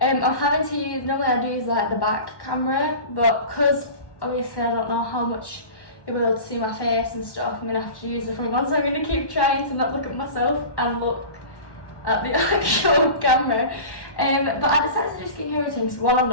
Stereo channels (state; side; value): late; right; 1.1 ms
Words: I'm having to use, normally I do use like the back camera, but because obviously I don't know how much you'll be able to see my face and stuff, I'm going to have to use the front one, so I'm going to keep trying to not look at myself and look at the actual camera. But I decided to do skincare routines. One, I've